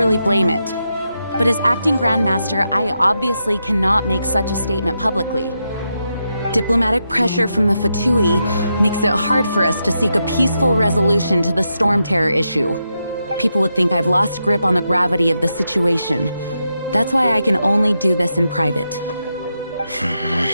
blame it. But as acting Grandmaster, I obviously cannot make such a statement publicly. Diplomatic pressure from the Fatui makes it hard for us to seek a peaceful resolution to the Storm Terror issue. People would think I've lost grip on the gravity of the situation. That's why I can only do this in private.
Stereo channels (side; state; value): both; inverted; correlation -0.85